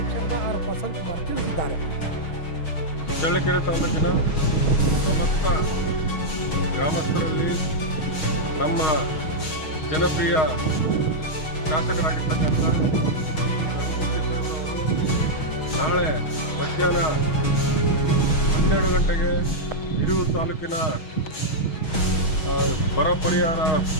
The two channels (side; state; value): right; late; 6.3 ms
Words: ಆರ್. ಪ್ರಸನ್ನ ಕುಮಾರ್ ತಿಳಿಸಿದ್ದಾರೆ. ಚಳ್ಳಕೆರೆ ತಾಲೂಕಿನ ಸಮಸ್ತ ಗ್ರಾಮಸ್ಥರಲ್ಲಿ ನಮ್ಮ ಜನಪ್ರಿಯ ಶಾಸಕರಾಗಿರ್ತಕ್ಕಂಥ ನಾಳೆ ಮಧ್ಯಾಹ್ನ 12 ಗಂಟೆಗೆ ಹಿರಿಯೂರು ತಾಲೂಕಿನ ಬರ ಪರಿಹಾರ